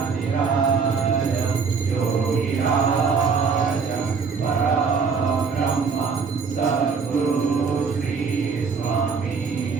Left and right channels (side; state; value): left; quieter; 5.4 dB